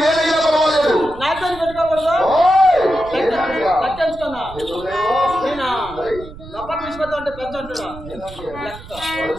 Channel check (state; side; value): noise; right; rumble, 16 dB below the sound